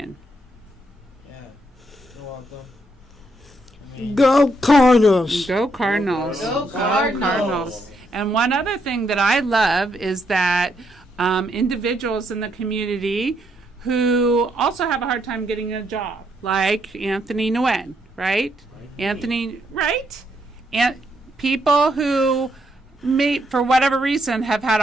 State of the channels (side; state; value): both; normal; correlation 0.76